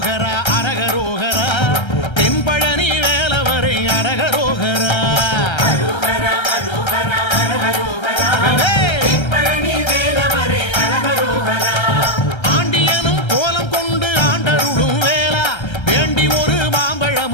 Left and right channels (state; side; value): late; right; 1.3 ms